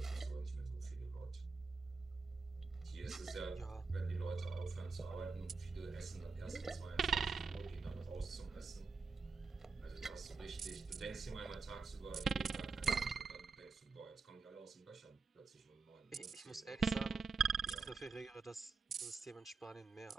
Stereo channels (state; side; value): quieter; left; 4.6 dB